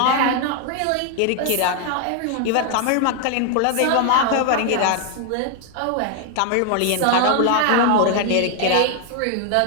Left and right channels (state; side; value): different; both; correlation 0.01